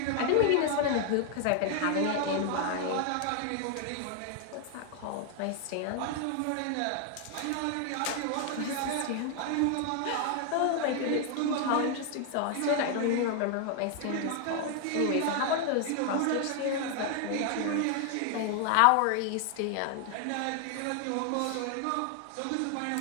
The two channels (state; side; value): different; both; correlation 0.00